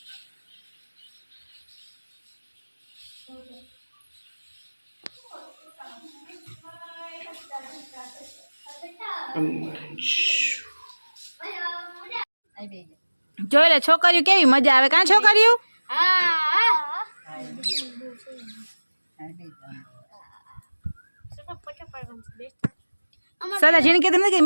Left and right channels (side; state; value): both; inverted; correlation -1.00